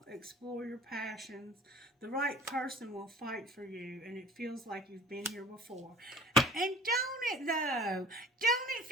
Explore your passions. The right person will fight for you, and it feels like you've been here before. And don't it, though? Don't it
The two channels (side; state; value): both; normal; correlation 0.46